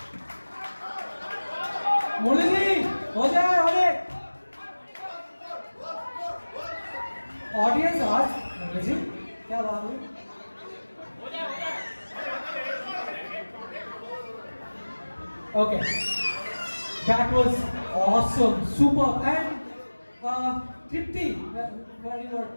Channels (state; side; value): inverted; both; correlation -1.00